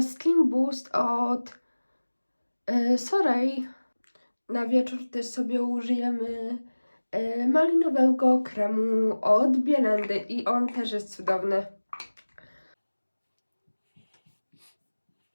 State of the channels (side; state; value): both; inverted; correlation -1.00